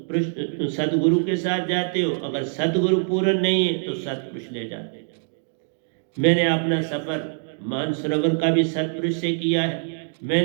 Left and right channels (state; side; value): silent; left; digital silence